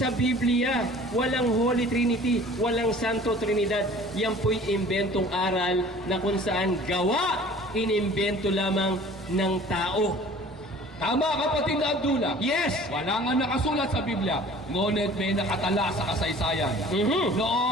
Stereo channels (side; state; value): both; normal; correlation 0.47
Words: Biblia. Walang Holy Trinity. Walang Santo Trinidad. Yan po'y imbentong aral na kung saan gawa, inimbento lamang ng tao. Tama, kapatid na Abdullah. Yes! Wala nga nakasulat sa Biblia. Ngunit may nakatala sa kasaysayan.